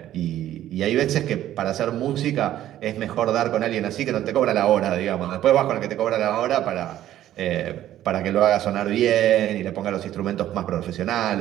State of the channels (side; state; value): left; quieter; 12.7 dB